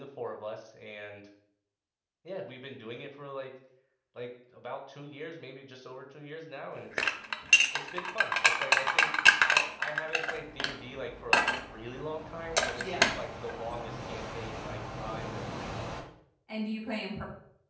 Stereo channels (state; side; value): identical; both; correlation 1.00